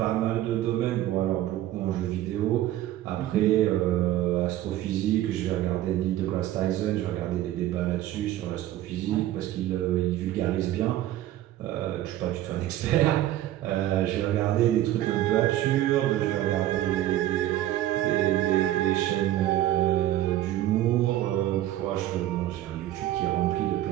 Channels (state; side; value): quieter; left; 13.7 dB